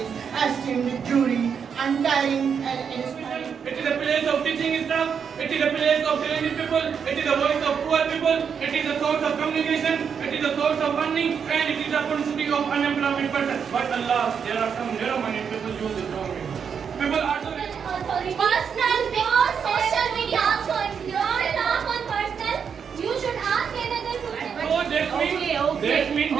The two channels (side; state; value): left; quieter; 6.9 dB